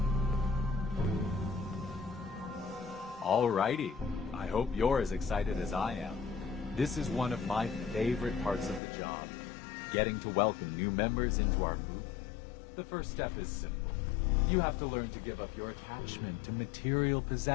Alrighty. I hope you're as excited as I am. This is one of my favorite parts of the job. Getting to welcome new members into our movement. The first step is simple. You have to learn to give up your attachment to material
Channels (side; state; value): right; drops out; at 8.8 s